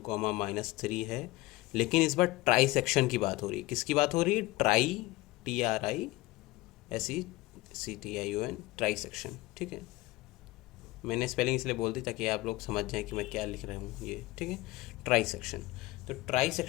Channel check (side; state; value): right; quieter; 19.9 dB